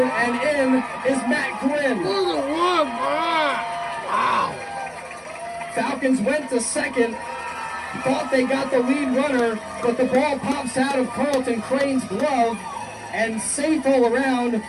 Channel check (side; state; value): both; identical; correlation 1.00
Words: and in is Matt Gwynn. Look at one. Wow. Falcons went to second. Thought they got the lead runner, but the ball pops out of Carlton Crane's glove and safe all around